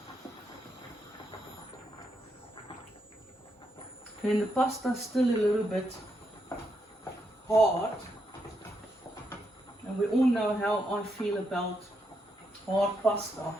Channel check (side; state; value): both; normal; correlation 0.80